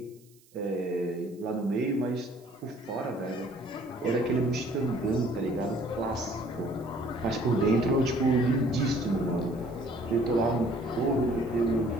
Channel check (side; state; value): right; noise; hiss, 29 dB below the sound